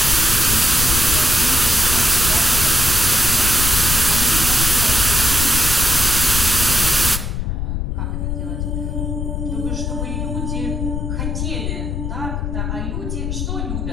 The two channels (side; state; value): left; noise; rumble, 3 dB below the sound